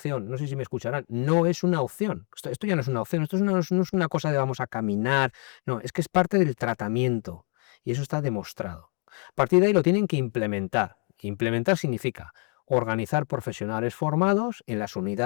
no sé si me escucharán, no es una opción. Esto ya no es una opción, esto no es una cosa de vamos a caminar, no, es que es parte del tratamiento y eso está demostrado. A partir de ahí lo tienen que implementar. Implementar significa organizar profesionales formados en las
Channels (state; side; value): quieter; right; 38.9 dB